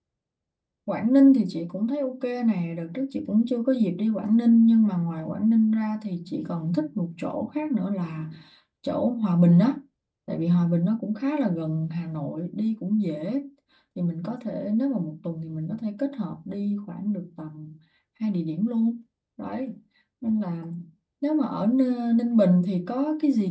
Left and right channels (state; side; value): identical; both; correlation 1.00